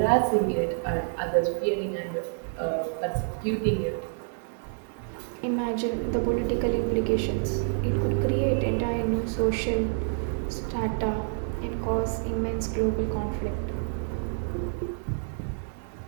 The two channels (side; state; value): left; silent; digital silence